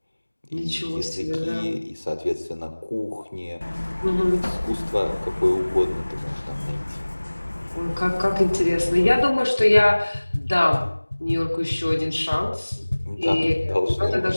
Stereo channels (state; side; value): inverted; both; correlation -1.00